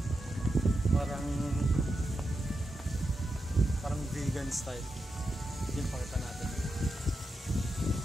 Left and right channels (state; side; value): normal; both; correlation 0.88